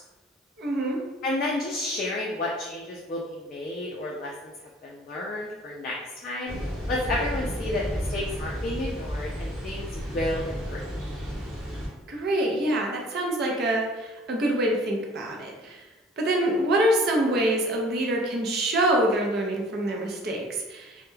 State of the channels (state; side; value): normal; both; correlation 0.51